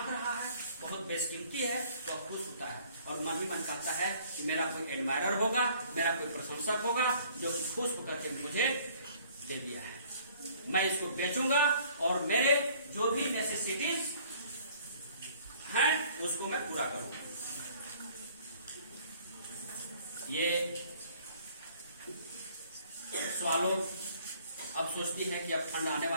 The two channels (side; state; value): both; inverted; correlation -0.57